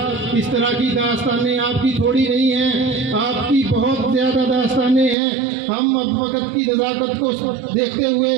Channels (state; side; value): drops out; left; at 5.2 s